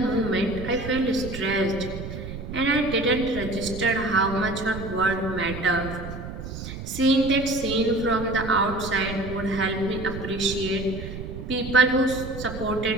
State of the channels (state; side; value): noise; right; rumble, 9 dB below the sound